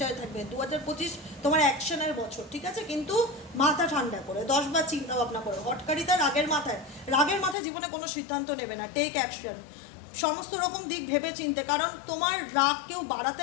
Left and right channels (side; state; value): right; drops out; at 7.6 s